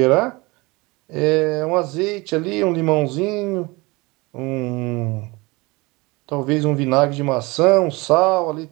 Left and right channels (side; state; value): left; quieter; 24.3 dB